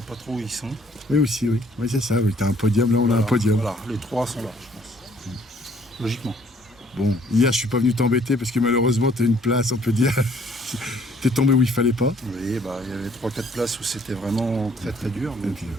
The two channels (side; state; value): both; normal; correlation 0.61